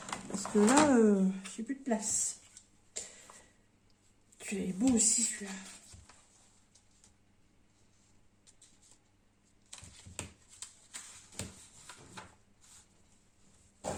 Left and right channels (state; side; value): identical; both; correlation 1.00